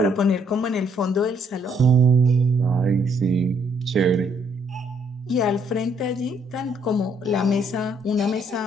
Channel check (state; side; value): normal; both; correlation 0.69